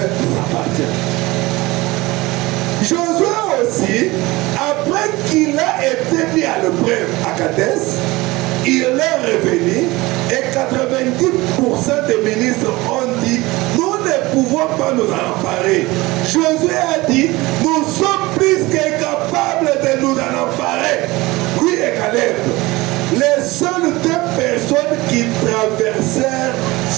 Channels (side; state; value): left; quieter; 21.1 dB